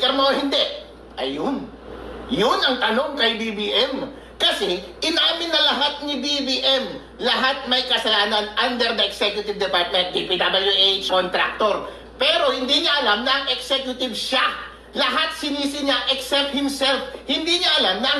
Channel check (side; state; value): both; identical; correlation 1.00